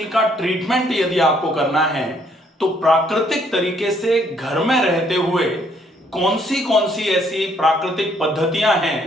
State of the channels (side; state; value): both; normal; correlation 0.67